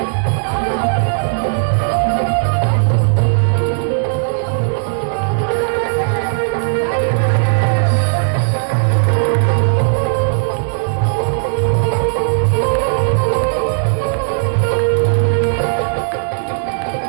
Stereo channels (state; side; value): silent; left; digital silence